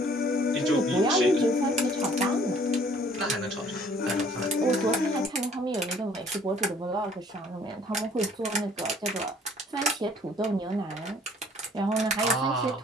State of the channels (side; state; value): both; normal; correlation 0.56